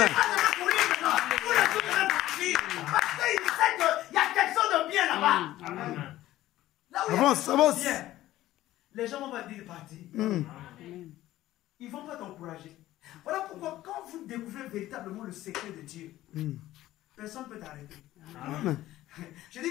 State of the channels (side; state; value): right; quieter; 15.0 dB